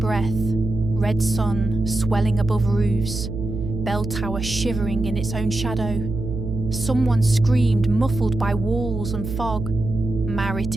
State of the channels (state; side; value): noise; right; hum, 6 dB below the sound